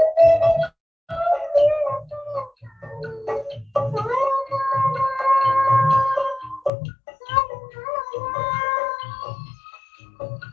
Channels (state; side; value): drops out; right; at 6.7 s